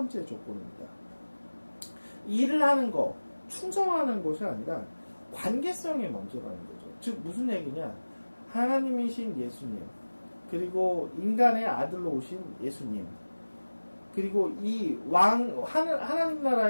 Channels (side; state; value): both; inverted; correlation -1.00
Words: 조건입니다. 일을 하는 것, 충성하는 것이 아니라 관계성이 먼저라는 거죠. 즉 무슨 얘기냐? 하나님이신 예수님, 그리고 인간의 아들로 오신 예수님, 그리고 이 하나님